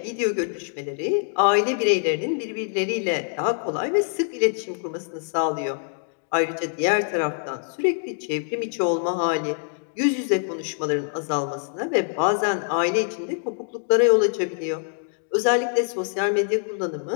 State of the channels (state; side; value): silent; right; digital silence